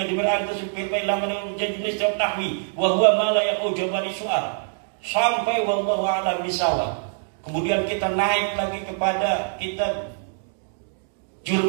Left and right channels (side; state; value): left; silent; 62 dB below the other